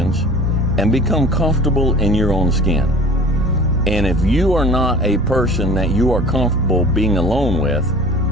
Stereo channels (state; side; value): normal; both; correlation 0.43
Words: And become comfortable in your own skin. And if you are not a person that you are comfortable being alone with,